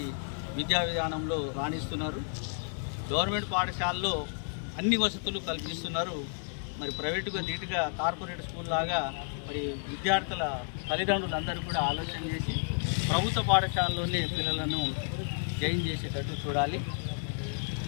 విద్యా విధానంలో రాణిస్తున్నారు. గవర్నమెంట్ పాఠశాలలో అన్ని వసతులు కల్పిస్తున్నారు. మరి ప్రైవేటుగా నీట్గా కార్పొరేట్ స్కూల్ లాగా మరి విద్యార్థుల తల్లిదండ్రులందరూ కూడా ఆలోచన చేసి ప్రభుత్వ పాఠశాలలోనే పిల్లలను జాయిన్ చేసేటట్టు చూడాలి.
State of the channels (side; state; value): right; silent; digital silence